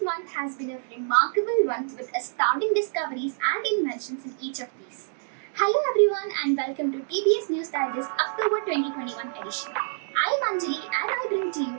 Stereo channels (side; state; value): left; silent; digital silence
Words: month has been a remarkable one with astounding discoveries and inventions in each of these. Hello everyone and welcome to TBS News Digest October 2021 edition. I am Anjali and I bring to you